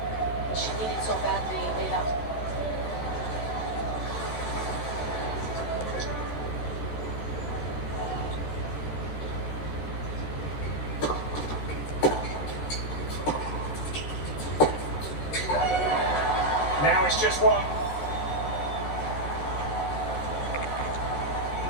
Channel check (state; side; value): late; right; 13 ms